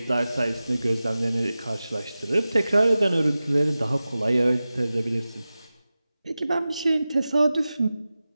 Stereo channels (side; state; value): both; inverted; correlation -0.95